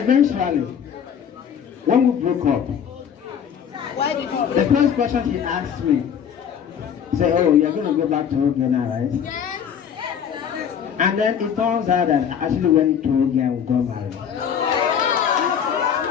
when we broke up, Why did you the first question he asked me, say, oh, you're going to go back to Oge now, right? And then it turns out that I actually went to Oge and got married.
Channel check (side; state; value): right; quieter; 8.1 dB